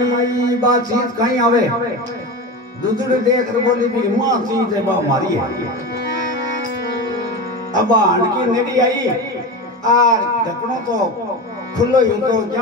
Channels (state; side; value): normal; both; correlation 0.25